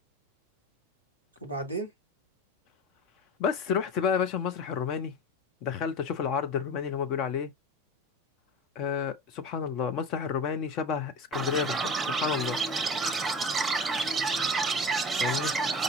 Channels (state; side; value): normal; both; correlation 0.31